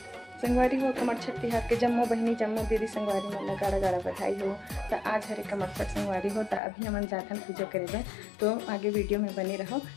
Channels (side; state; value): right; drops out; at 6.6 s